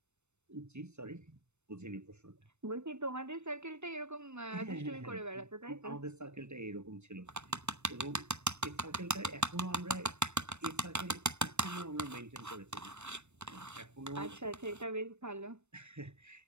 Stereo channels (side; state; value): left; late; 0.82 ms